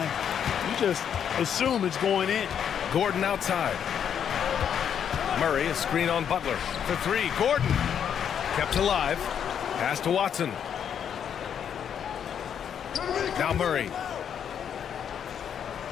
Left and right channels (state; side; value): quieter; right; 8.4 dB